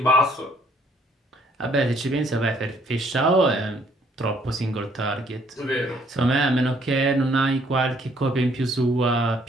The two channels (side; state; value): both; normal; correlation 0.64